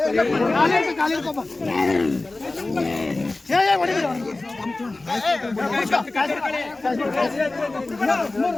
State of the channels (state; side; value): quieter; right; 3.1 dB